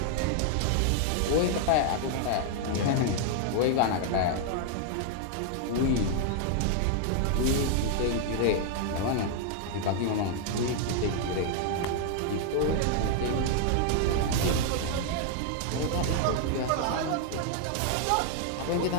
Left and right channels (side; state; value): both; different; correlation 0.00